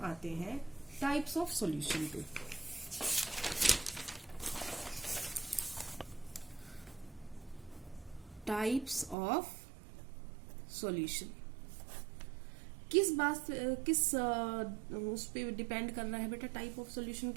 आते हैं टाइप्स ऑफ सॉल्यूशन पे। Types of solution. किस बात किस उस पे डिपेंड कर रहा है बेटा, टाइप ऑफ सॉल्यूशन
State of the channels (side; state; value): left; drops out; at 9.2 s